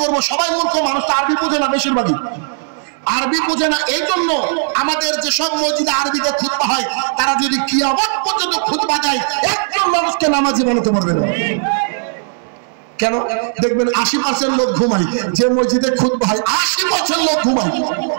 করবো, সবাই মূর্খ মানুষ, তো আরবি বোঝে না, বেশিরভাগই আরবি বোঝে না। এই জন্য আমাদের যেসব মসজিদে আরবিতে খুতবা হয়, তারা যদি কিয়ামত পর্যন্ত খুতবা দেয়, একজন মানুষকে নামাজি বানাতে পারবে না। কেন? দেখবেন 80% লোক ঘুমায় যে মসজিদে খুতবা হয়, 80% লোক ঘুমায়।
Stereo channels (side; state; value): left; silent; 69 dB below the other